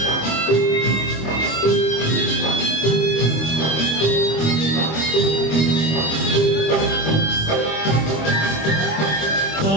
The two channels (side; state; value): right; late; 25 ms